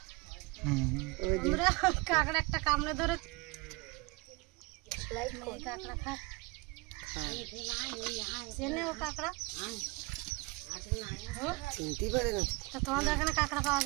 কাঁকড়া একটা কামড়ে ধরে কাঁকড়া খায়, চেনে ও কাঁকড়া চিনতেই পারে না। তা তোমাদের এখানে কাঁকড়া পাওয়া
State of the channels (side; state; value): left; quieter; 25.0 dB